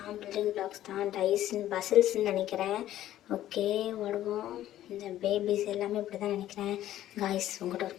பில்டிங் பிளாக்ஸ் தான், பசில்ஸ்ன்னு நினைக்கிறேன். ஓகே, ஓடுவோம். இந்த பேபிஸ் எல்லாமே இப்படி தான் நினைக்கிறேன். காய்ஸ், உங்கள்கிட்ட ஒரு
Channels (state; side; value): quieter; right; 13.1 dB